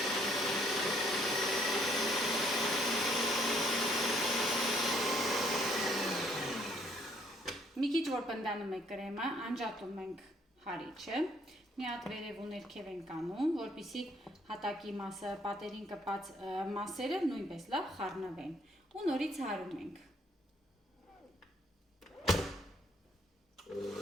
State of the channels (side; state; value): both; normal; correlation 0.65